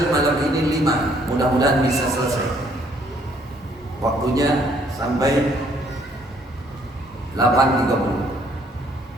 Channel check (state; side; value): normal; both; correlation 0.65